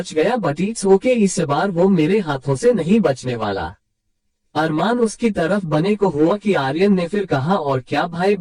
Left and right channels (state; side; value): identical; both; correlation 1.00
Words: गया, बट इट्स ओके, इस बार वो मेरे हाथों से नहीं बचने वाला। अरमान उसकी तरफ बने को हुआ कि आर्यन ने फिर कहा, और क्या भाई